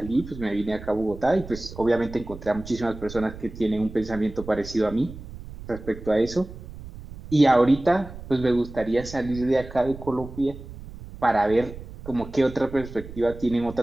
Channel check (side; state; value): right; noise; rumble, 14 dB below the sound